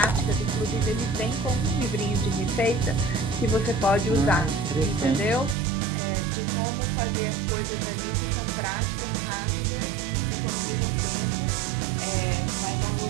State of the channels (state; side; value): drops out; left; at 5.6 s